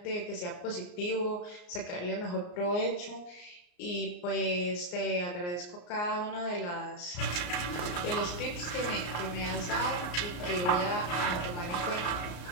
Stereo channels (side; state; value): right; late; 34 ms